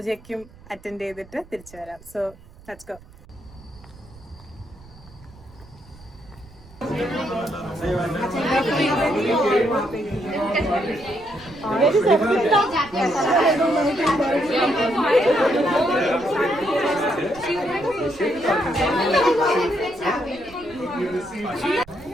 അറ്റൻഡ് ചെയ്തിട്ട് തിരിച്ചു വരാം. So let's go.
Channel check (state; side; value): noise; right; rumble, 22 dB below the sound